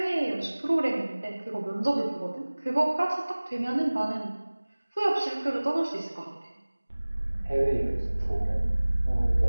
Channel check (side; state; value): both; inverted; correlation -1.00